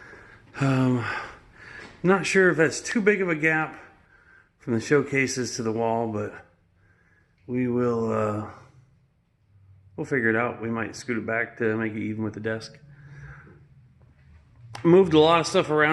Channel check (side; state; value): both; identical; correlation 1.00